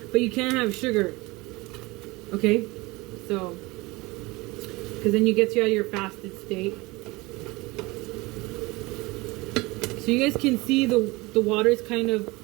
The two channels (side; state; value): left; quieter; 22.8 dB